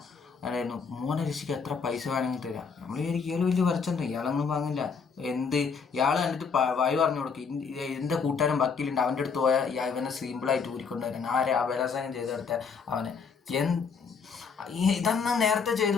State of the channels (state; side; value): quieter; right; 5.6 dB